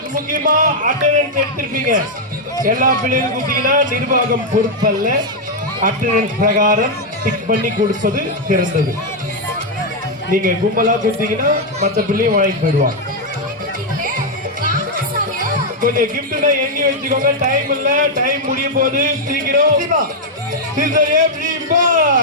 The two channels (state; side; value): normal; both; correlation -0.01